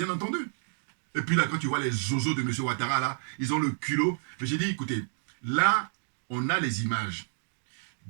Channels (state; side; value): silent; left; 58 dB below the other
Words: entendu. Et puis là, quand tu vois les zozos de M. Ouattara, là, ils ont le culot. Mais j'ai dit, écoutez, là, on a les images.